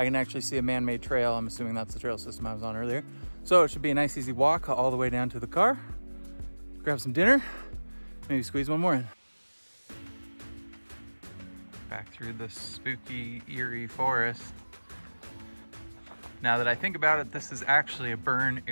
can actually see a man-made trail. I'm assuming that's the trail system I was on earlier. So it should be a nice easy walk all the way down to the car, grab some dinner, maybe squeeze one more in. Back through the spooky, eerie forest. Now that I think about it, this is actually a burn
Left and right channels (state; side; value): inverted; both; correlation -1.00